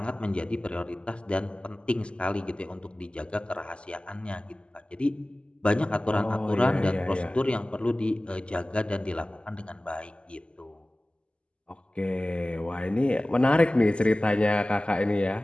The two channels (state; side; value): late; right; 0.052 ms